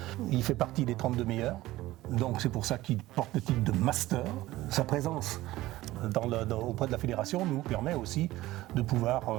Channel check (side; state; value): left; quieter; 17.0 dB